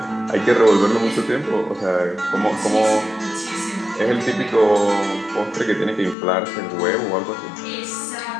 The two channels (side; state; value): right; drops out; at 6.2 s